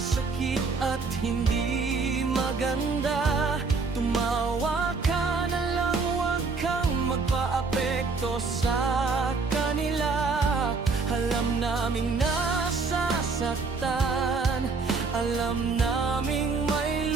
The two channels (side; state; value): left; quieter; 4.3 dB